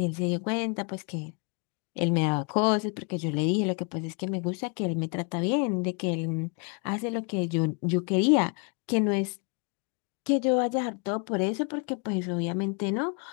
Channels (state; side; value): quieter; right; 36.4 dB